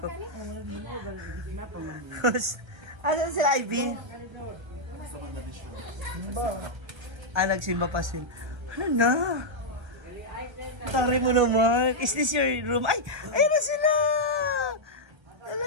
Asan sila, Ivy? Nagsimba pa sila. Ano na? Tari mo naman. Is this your room? Ay! Ayun na sila! Ala,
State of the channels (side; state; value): left; late; 1.3 ms